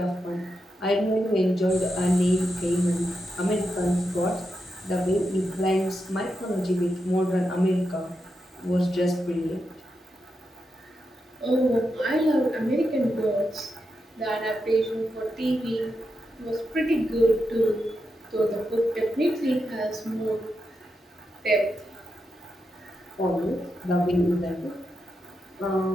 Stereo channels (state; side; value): normal; both; correlation 0.86